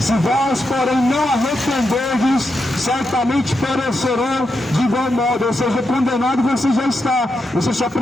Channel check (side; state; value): both; normal; correlation 0.85